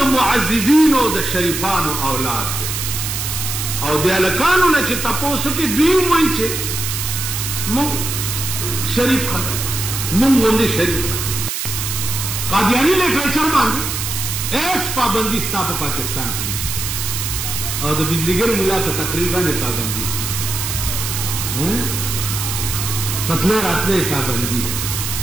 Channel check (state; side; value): noise; right; hiss, 3 dB below the sound